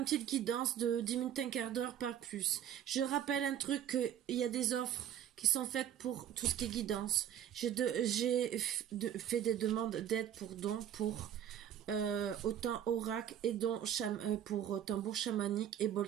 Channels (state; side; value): quieter; left; 10.3 dB